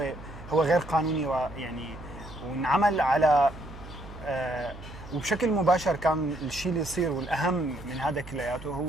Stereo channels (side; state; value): right; noise; hum, 15 dB below the sound